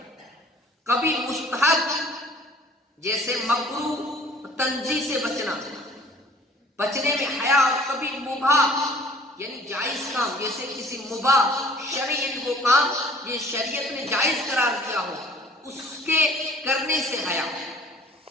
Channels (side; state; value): both; normal; correlation 0.52